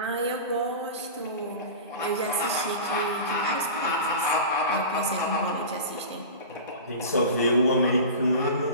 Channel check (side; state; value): both; inverted; correlation -0.32